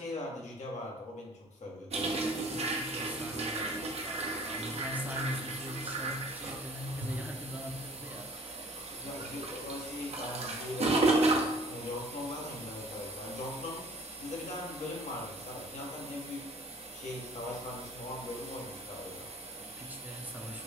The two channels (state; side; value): normal; both; correlation 0.52